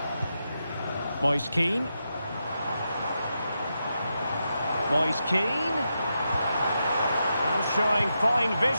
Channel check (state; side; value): inverted; both; correlation -0.86